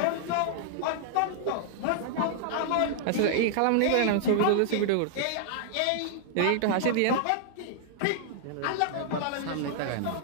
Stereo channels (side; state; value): both; different; correlation -0.01